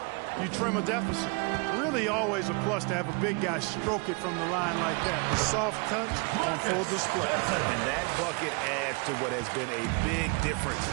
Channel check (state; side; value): quieter; left; 31.8 dB